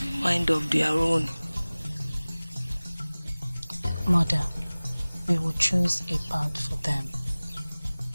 a mind of their own. Mother, we will choose a path for them.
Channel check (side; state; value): both; inverted; correlation -0.99